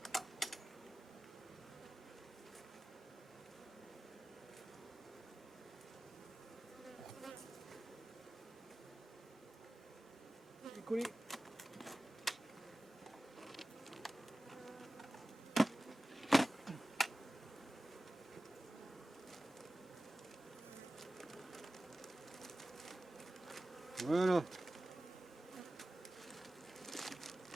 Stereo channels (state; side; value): normal; both; correlation 0.96